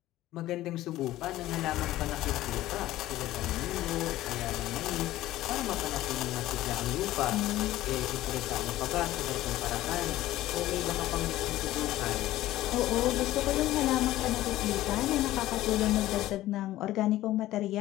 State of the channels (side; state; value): right; quieter; 15.3 dB